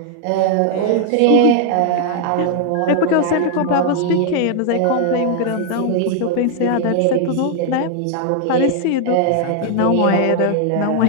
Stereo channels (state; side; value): different; both; correlation 0.00